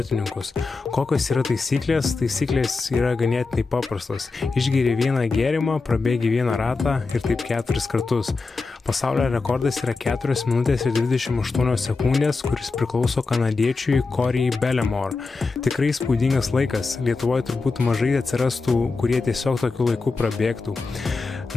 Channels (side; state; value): right; quieter; 4.0 dB